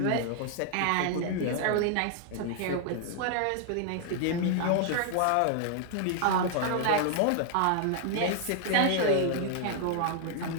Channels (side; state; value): both; different; correlation 0.00